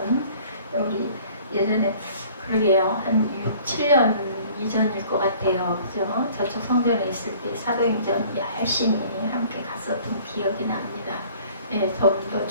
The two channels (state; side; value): inverted; both; correlation -0.52